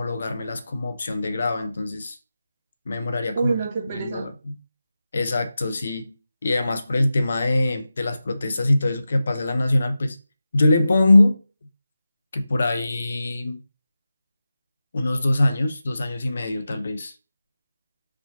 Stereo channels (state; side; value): inverted; both; correlation -0.93